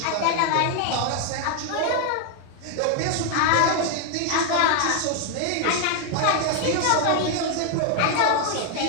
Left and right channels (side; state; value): both; different; correlation 0.00